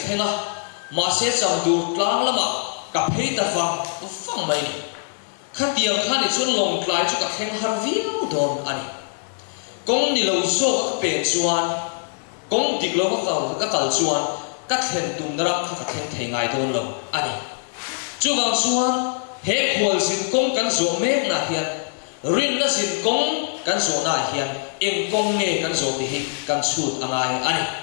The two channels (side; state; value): right; silent; 64 dB below the other